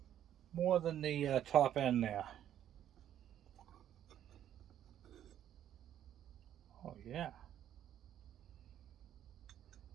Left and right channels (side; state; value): left; quieter; 10.9 dB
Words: More than the top end there. Oh yeah.